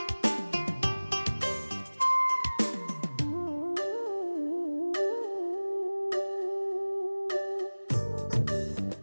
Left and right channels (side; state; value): both; inverted; correlation -1.00